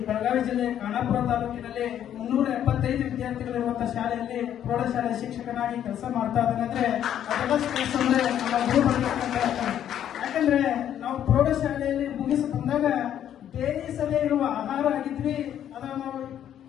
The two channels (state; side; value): quieter; right; 10.3 dB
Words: ಬೆಳಗಾವಿ ಜಿಲ್ಲೆ ಖಾನಾಪುರ ತಾಲೂಕಿನಲ್ಲಿ 375 ವಿದ್ಯಾರ್ಥಿಗಳಿರುವಂತಹ ಶಾಲೆಯಲ್ಲಿ ಪ್ರೌಢಶಾಲೆ ಶಿಕ್ಷಕನಾಗಿ ಕೆಲಸ ಮಾಡ್ತಾ ಇದ್ದೇನೆ. ಅಂದ್ರೆ ನಮ್ಮ ಗುರು ಯಾಕಂದ್ರೆ ನಾವು ಪ್ರೌಢಶಾಲೆಯಲ್ಲಿ ಮುಗಿಸಿ ಬಂದಾಗ ಬೇಯಿಸದೇ ಇರುವ ಆಹಾರ ಆಗಿದ್ವಿ. ಅದನ್ನು ನಾವು